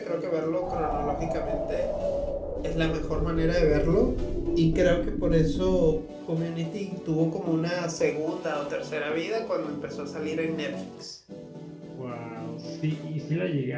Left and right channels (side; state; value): both; identical; correlation 1.00